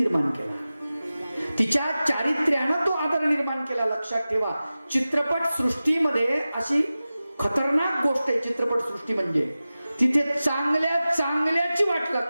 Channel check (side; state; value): both; inverted; correlation -0.95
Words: केला. तिच्या चारित्र्यानं तो आदर निर्माण केला. लक्षात ठेवा, चित्रपट सृष्टीमध्ये अशी खतरनाक गोष्ट आहे. चित्रपट सृष्टी म्हणजे तिथे चांगल्या चांगल्याची वाट